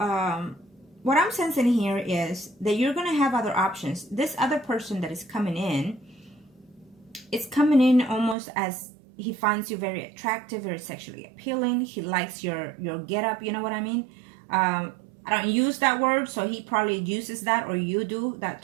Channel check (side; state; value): left; drops out; at 8.3 s